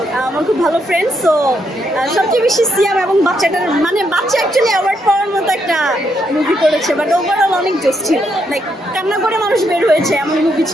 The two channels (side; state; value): both; normal; correlation 0.77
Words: আমার খুব ভালো ফ্রেন্ড। সো সবচেয়ে বেশি সিয়াম এবং বাচ্চাটার মানে বাচ্চা অ্যাকচুয়ালি অ্যাওয়ার্ড পাওয়ার মতো একটা মুভি করেছে, বাট ওভারঅল অনেক জোস ছিল, লাইক কান্না করে মানুষ বের হয়েছে এমন মুভি